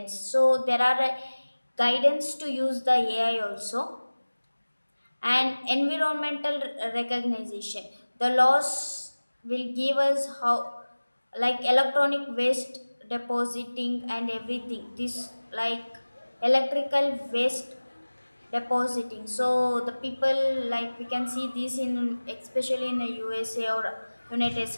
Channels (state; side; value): inverted; both; correlation -1.00